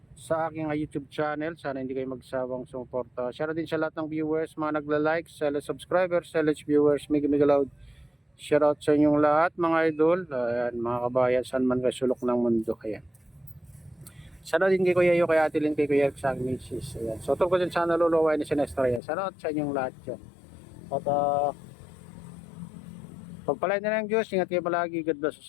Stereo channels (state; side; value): drops out; right; at 19.0 s